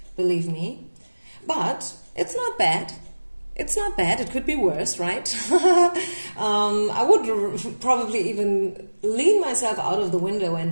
believe me. But it's not bad. It's not bad. It could be worse, right? I would probably even lean myself out of the window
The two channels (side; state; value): both; inverted; correlation -1.00